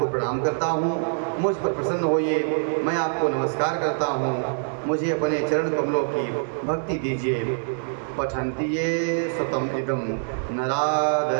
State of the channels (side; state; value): left; silent; digital silence